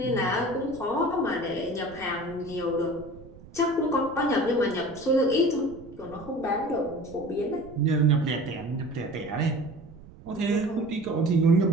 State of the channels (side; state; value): right; noise; rumble, 20 dB below the sound